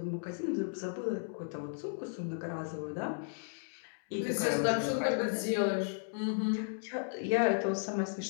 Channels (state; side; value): silent; right; digital silence